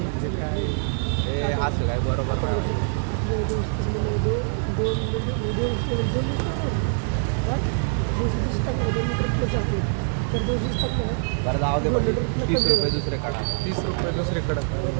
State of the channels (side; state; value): left; silent; 58 dB below the other